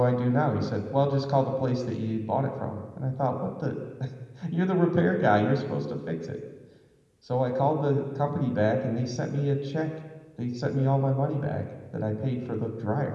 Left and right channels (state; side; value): identical; both; correlation 1.00